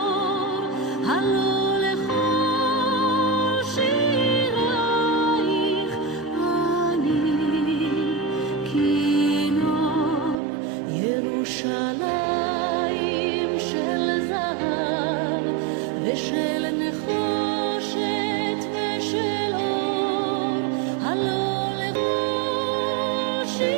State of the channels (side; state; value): left; drops out; at 10.4 s